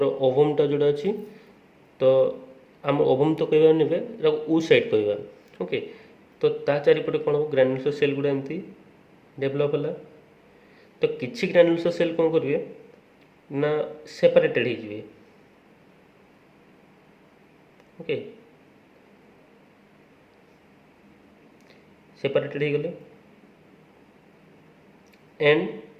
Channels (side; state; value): both; identical; correlation 1.00